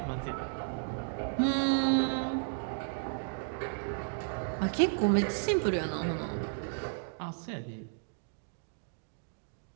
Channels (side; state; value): left; silent; digital silence